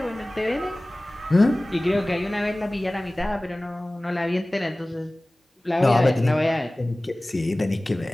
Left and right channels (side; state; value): both; normal; correlation 0.98